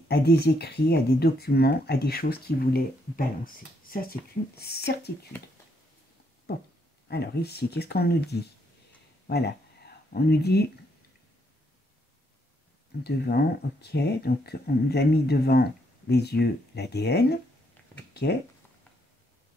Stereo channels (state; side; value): normal; both; correlation 0.74